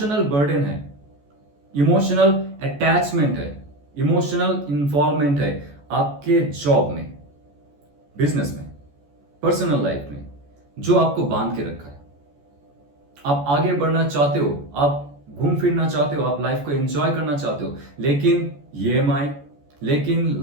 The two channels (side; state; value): left; late; 14 ms